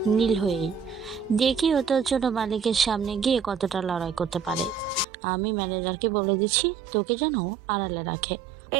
নীল হয়েই। দেখি ও তোর জন্য মালিকের সামনে গিয়ে কতটা লড়াই করতে পারে। আমি ম্যানেজারকে বলে দিচ্ছি তোকে যেন আড়ালে রাখে।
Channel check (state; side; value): drops out; left; at 5.1 s